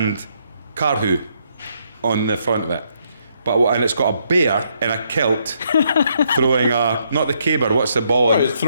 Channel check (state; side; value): inverted; both; correlation -0.74